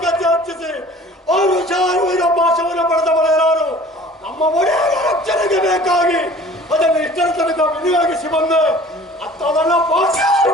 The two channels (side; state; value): both; normal; correlation 0.47